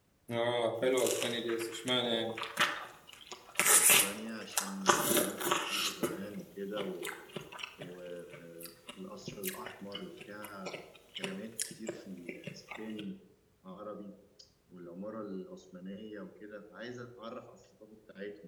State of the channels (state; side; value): identical; both; correlation 1.00